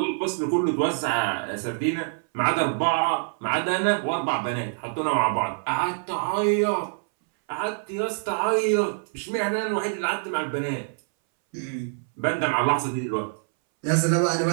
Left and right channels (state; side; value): silent; left; 61 dB below the other